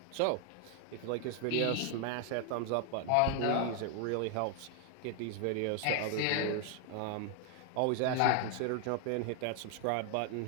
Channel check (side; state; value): both; different; correlation 0.00